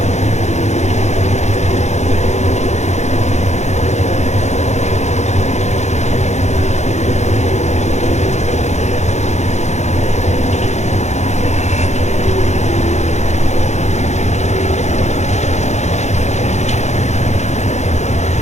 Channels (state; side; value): late; right; 0.33 ms